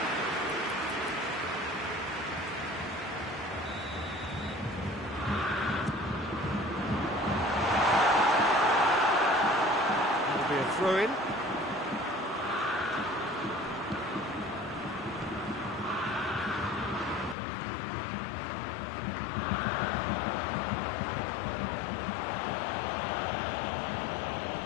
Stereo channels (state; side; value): drops out; right; at 17.4 s